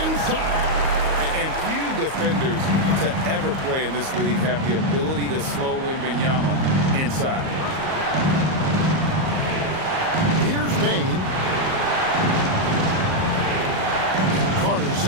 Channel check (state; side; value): late; left; 38 ms